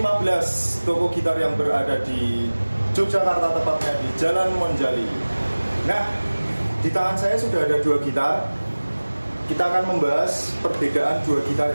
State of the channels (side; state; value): both; inverted; correlation -1.00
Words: toko gitar yang berada di Yogyakarta, tepatnya di Jalan Monjali. Nah, di tangan saya sudah ada dua gitar. Kita akan membahas perbedaan dua gitar